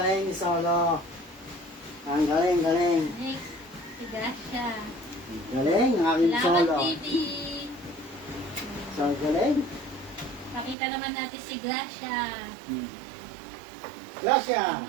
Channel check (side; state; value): left; drops out; at 10.8 s